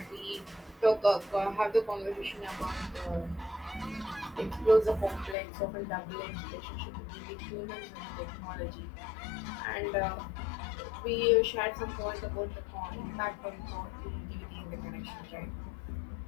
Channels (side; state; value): right; drops out; at 5.4 s